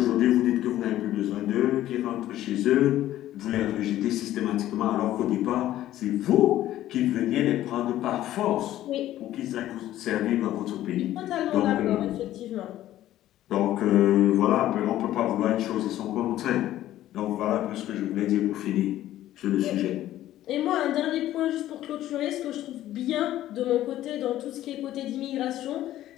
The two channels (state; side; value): quieter; right; 13.6 dB